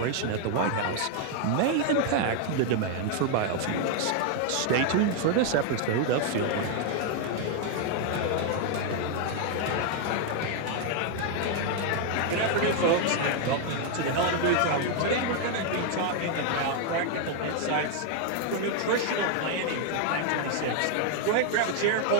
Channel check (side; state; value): both; different; correlation 0.00